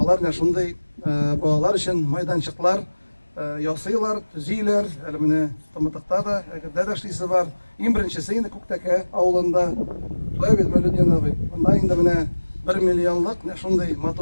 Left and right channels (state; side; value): inverted; both; correlation -1.00